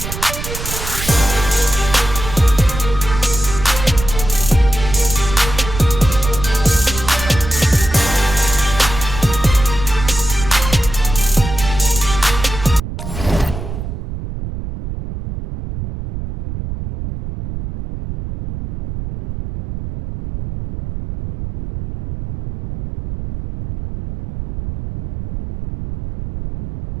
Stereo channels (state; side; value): noise; right; rumble, 8 dB below the sound